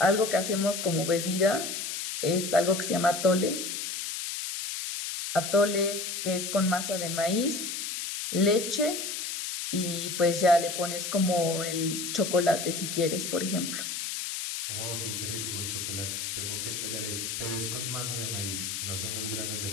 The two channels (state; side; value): noise; left; hiss, 4 dB below the sound